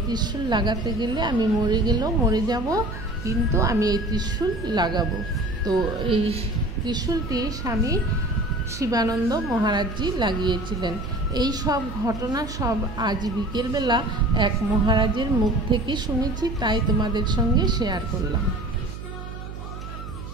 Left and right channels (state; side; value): noise; right; hum, 10 dB below the sound